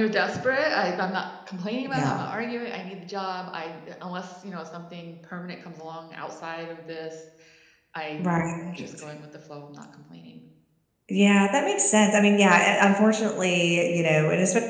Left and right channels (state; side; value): identical; both; correlation 1.00